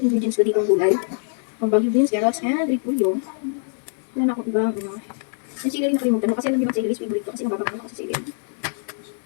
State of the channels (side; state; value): right; silent; 61 dB below the other